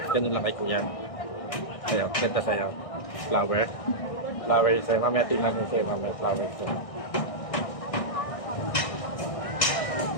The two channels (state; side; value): late; right; 1.6 ms